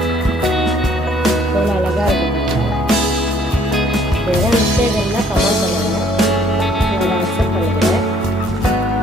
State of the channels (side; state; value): both; normal; correlation 0.61